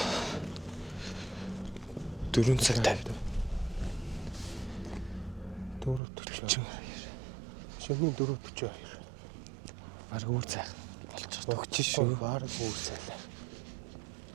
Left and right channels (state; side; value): drops out; left; at 6.0 s